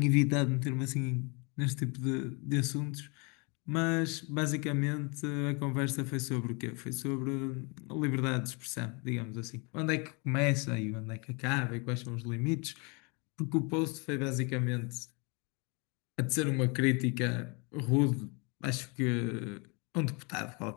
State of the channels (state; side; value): quieter; right; 31.5 dB